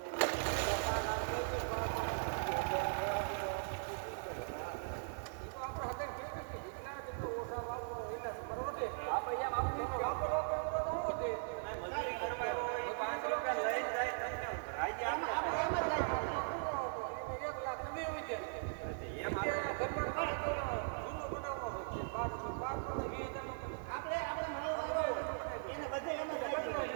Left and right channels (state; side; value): silent; left; 51 dB below the other